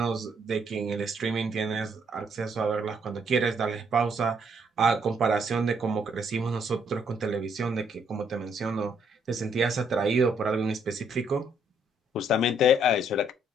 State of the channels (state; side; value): normal; both; correlation 0.69